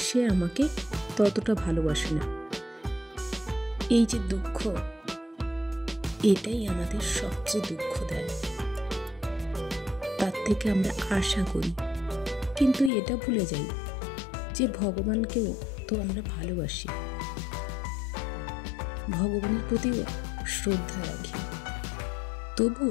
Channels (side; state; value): right; drops out; at 12.9 s